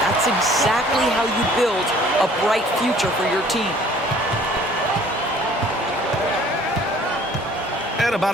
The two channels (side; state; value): both; normal; correlation 0.54